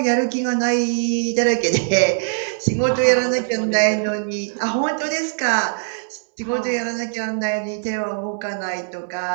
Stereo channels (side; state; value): left; silent; digital silence